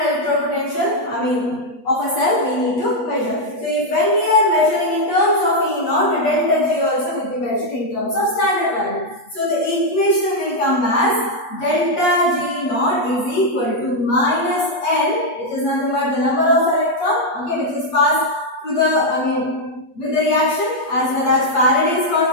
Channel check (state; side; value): late; right; 8.4 ms